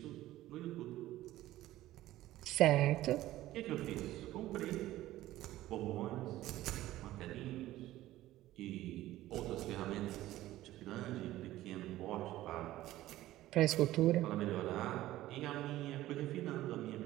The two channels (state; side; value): quieter; left; 15.3 dB